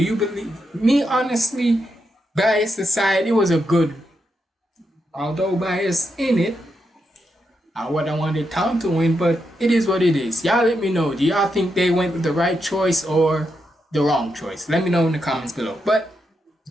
believe me? Honestly, bias aside, it was a good, although bias in it. I wouldn't wanted Tom to win, but it is what it is. Y'all let me know. Do y'all think they went with the right choice or the wrong choice? Let me know in the comments below. But it's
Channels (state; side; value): normal; both; correlation 0.83